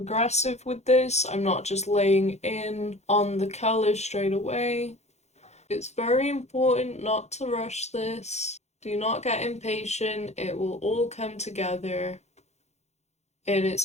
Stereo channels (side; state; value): right; late; 0.32 ms